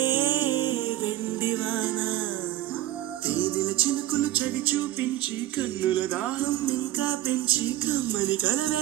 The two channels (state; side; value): quieter; left; 14.3 dB